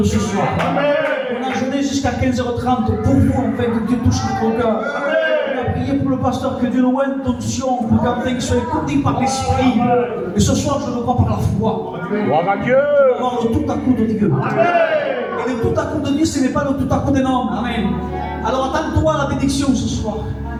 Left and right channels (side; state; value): both; identical; correlation 1.00